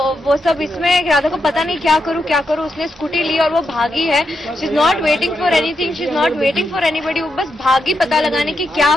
वो सब इसमें राधा को पता नहीं क्या करूँ, उसने स्कूटी ली और वो भागी है। She is not waiting for anything, she is not waiting for anybody, वो बस भागी पता लगाने की क्या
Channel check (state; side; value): normal; both; correlation 0.84